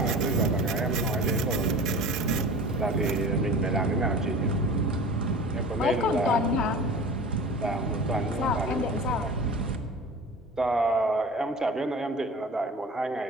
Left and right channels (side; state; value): both; normal; correlation 0.37